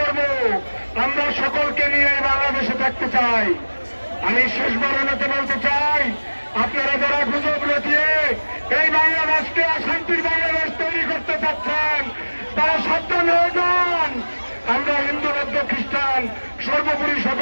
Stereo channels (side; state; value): both; inverted; correlation -1.00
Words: আমরা সকলকে নিয়ে এই বাংলাদেশে থাকতে চাই। আমি শেষবারের মতো বলতে চাই, আপনারা যারা গুজব রটিয়ে এই বাংলাদেশকে অশান্তির বাংলাদেশ তৈরি করতে চাচ্ছেন, তারা সাবধান হয়ে যান। আমরা হিন্দু, বৌদ্ধ, খ্রিস্টান সর্বোপরি